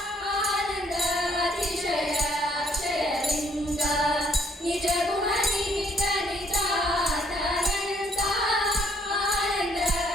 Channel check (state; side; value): normal; both; correlation 0.66